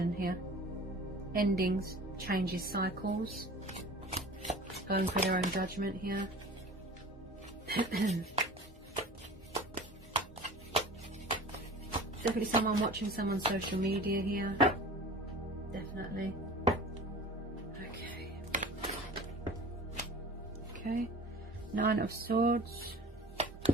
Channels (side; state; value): both; normal; correlation 0.40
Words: here. Endings, changes, cycles. Going for their own judgment here. Definitely someone watching someone's social media here. Definitely. Okay, Nine of Swords.